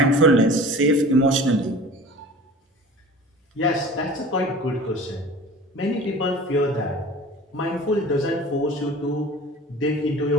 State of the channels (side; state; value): both; normal; correlation 0.41